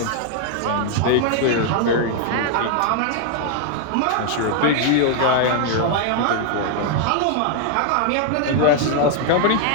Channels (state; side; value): different; both; correlation 0.00